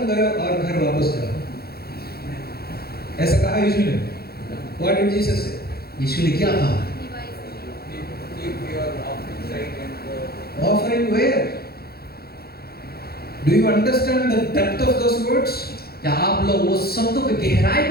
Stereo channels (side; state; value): right; late; 0.45 ms